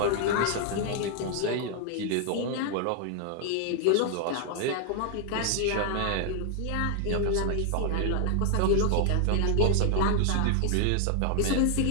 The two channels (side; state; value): both; different; correlation 0.00